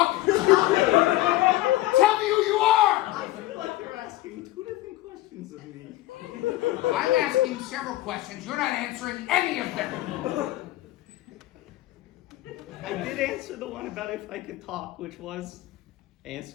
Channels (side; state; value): right; quieter; 16.7 dB